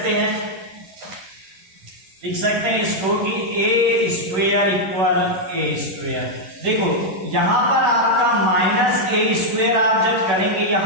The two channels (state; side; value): late; left; 11 ms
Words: हैं? लिख सकते हैं इसको कि ए स्क्वायर इक्वल ए स्क्वायर। देखो यहां पर आपका माइनस ए स्क्वायर आप जब करेंगे,